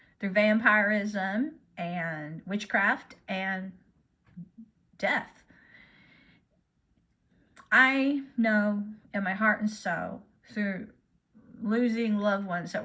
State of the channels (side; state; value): both; identical; correlation 1.00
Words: through vampirism and witchcraft and death. I know in my heart and soul, through losing loved ones that